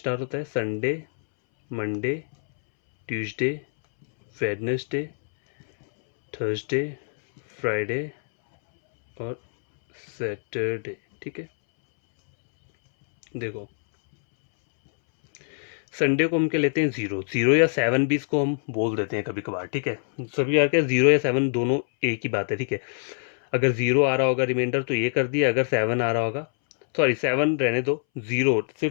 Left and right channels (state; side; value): silent; right; 62 dB below the other